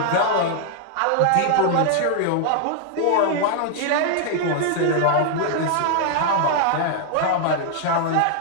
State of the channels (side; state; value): both; different; correlation 0.00